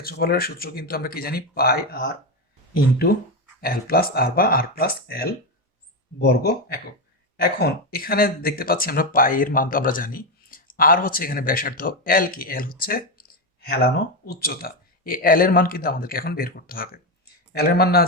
সূত্র কিন্তু আমরা কি জানি, পাই আর ইন্টু এল প্লাস আর বা আর প্লাস এল বর্গ একক। এখন এখানে দেখতে পাচ্ছি আমরা পাই এর মান তো আমরা জানি, আর হচ্ছে এখানে ব্যাসার্ধ, এল কি, এল হচ্ছে হেলানো উচ্চতা। এই এল এর মান কিন্তু আমাদেরকে এখন বের করতে হবে। এল এর মান না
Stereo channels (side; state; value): both; normal; correlation 0.10